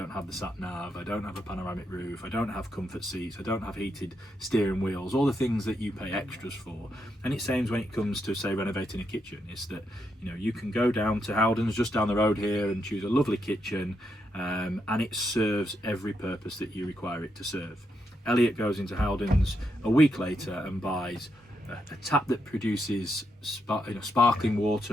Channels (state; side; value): normal; both; correlation 0.81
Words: have the sat nav, I don't have a panoramic roof, I don't have comfort seats, I don't have heated steering wheels, all the things that you pay extras for. And it seems when it comes to, say, renovating a kitchen, is that, you know, you can go down to Howden's just down the road here and choose a lovely kitchen, and it serves every purpose that you require it to serve. Elliot goes into Howden's a week later and buys a tap that produces sparkling